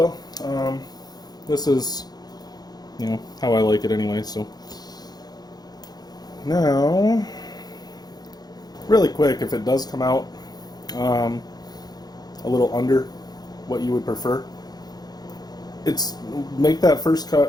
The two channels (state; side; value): late; right; 0.19 ms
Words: this is, how I like it anyway, so. Now, really quick, if it does come out a little under what you would prefer, make that first